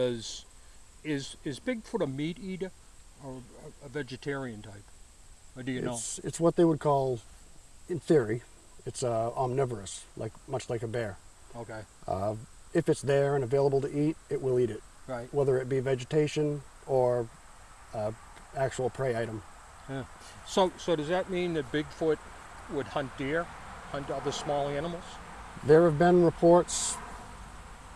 is Bigfoot a meat eater or a vegetarian type? Or do you know? It's what they would call, in theory, it's omnivorous, much like a bear. Okay. If it's there and available to eat, it will eat it. Right. Whether it be vegetation or actual prey item. Yeah. So does that mean that Bigfoot would hunt deer, hunt other small animals? There have been reports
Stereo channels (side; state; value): both; identical; correlation 1.00